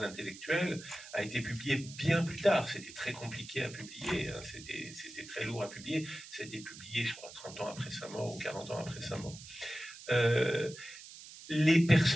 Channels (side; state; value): right; noise; hiss, 15 dB below the sound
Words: intellectuel, a été publié bien plus tard. C'était très compliqué à publier, hein. C'était très lourd à publier. Ça a été publié, je crois, 30 ans après sa mort ou 40 ans après sa mort. Les